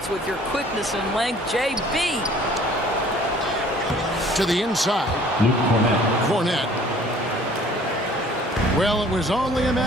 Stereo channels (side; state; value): both; normal; correlation 0.53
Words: with your quickness and length. JB. To the inside. Luke Cornette. Well, it was only a